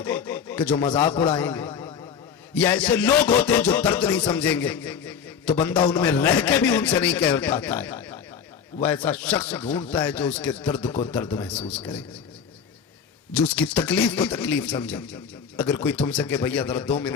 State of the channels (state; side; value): quieter; right; 7.1 dB